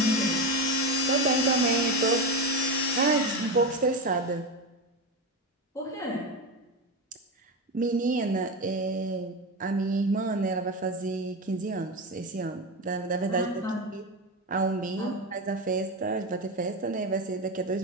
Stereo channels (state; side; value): normal; both; correlation 0.17